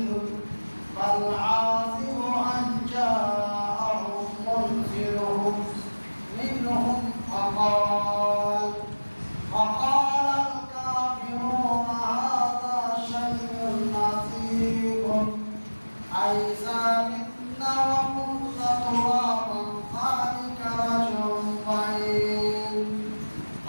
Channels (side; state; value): both; inverted; correlation -1.00